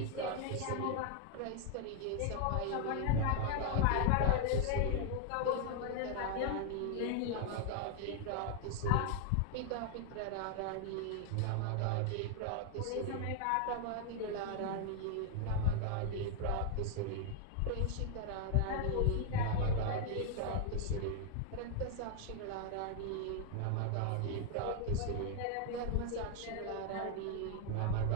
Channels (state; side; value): different; both; correlation 0.00